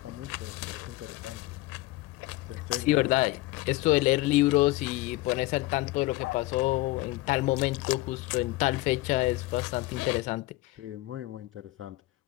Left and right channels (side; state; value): right; quieter; 18.8 dB